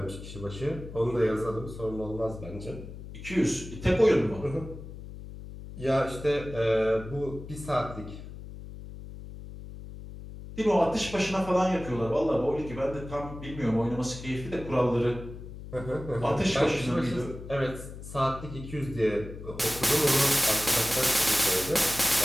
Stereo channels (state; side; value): noise; left; hum, 12 dB below the sound